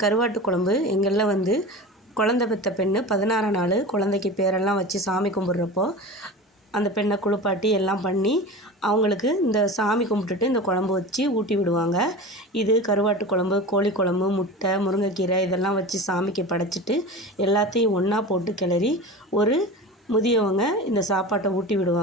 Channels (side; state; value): both; normal; correlation 0.31